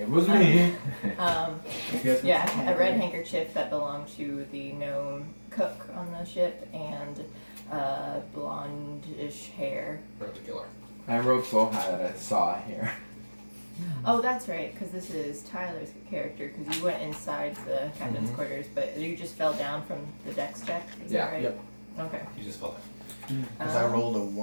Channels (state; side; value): inverted; both; correlation -1.00